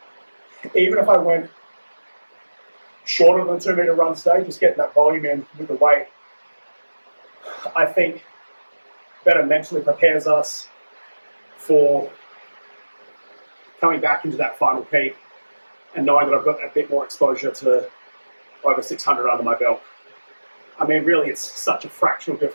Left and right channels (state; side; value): inverted; both; correlation -1.00